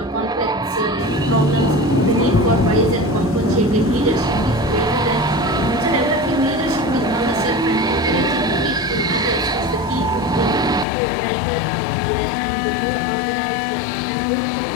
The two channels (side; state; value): right; drops out; at 10.9 s